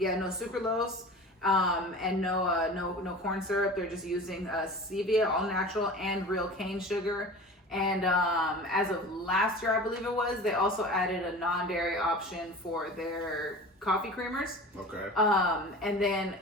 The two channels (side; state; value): both; normal; correlation 0.37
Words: sucralose, and no corn syrup. They're just using stevia, all natural, and real cane sugar. And as of last year, I believe it was, they also added a non-dairy option for their coffee creamers. Okay. And then